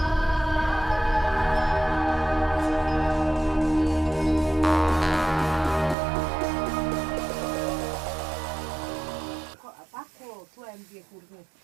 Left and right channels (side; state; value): left; drops out; at 6.0 s